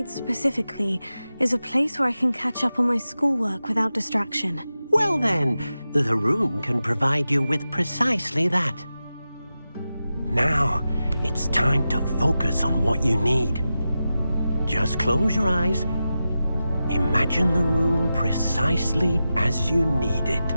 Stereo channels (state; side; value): inverted; both; correlation -0.92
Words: specifically is a place where I can catch up on my schoolwork without distraction. Well then, the room can provide you with precisely that. Now, it's time to focus on what you need. Just close your eyes. Imagine the room precisely as you need it.